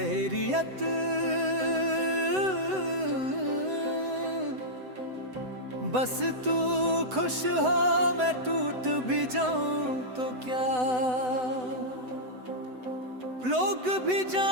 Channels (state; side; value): late; left; 7.9 ms